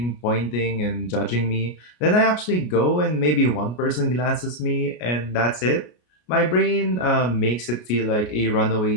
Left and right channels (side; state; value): right; late; 33 ms